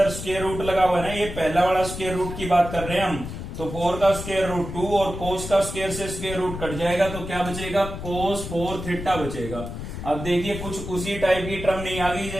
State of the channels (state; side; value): noise; left; rumble, 8 dB below the sound